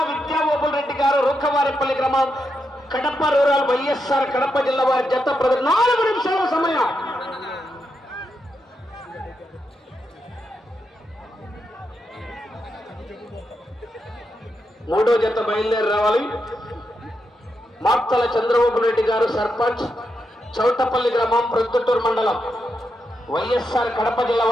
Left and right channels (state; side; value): normal; both; correlation 0.84